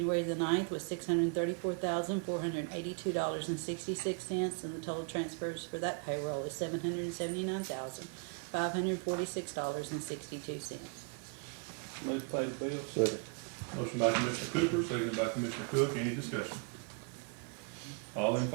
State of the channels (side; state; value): left; quieter; 34.1 dB